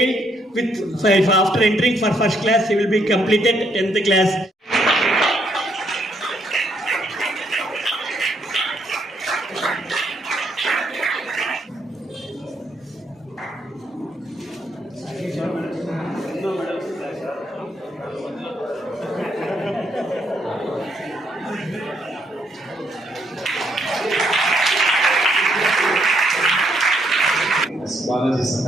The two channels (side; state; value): both; normal; correlation 0.73